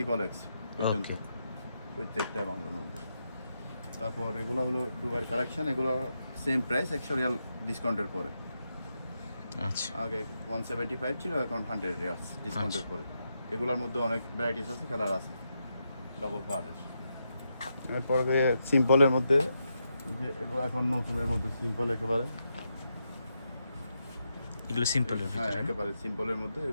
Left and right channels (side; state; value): both; inverted; correlation -0.84